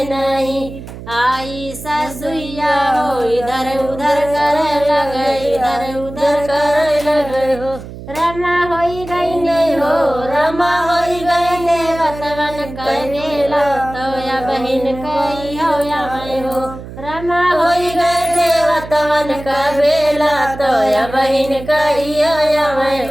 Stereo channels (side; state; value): right; noise; hum, 13 dB below the sound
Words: नहीं। आई ससुइया हो इधर उधर करे लगे, इधर उधर करे लगे हो। रमा होई गई नहीं हो, रमा होई गई देवतवन करेला तो या बहिन कही हो या मैं हो। रमा होई गई देवतवन का बेला तो या बहिन कही हो या मैं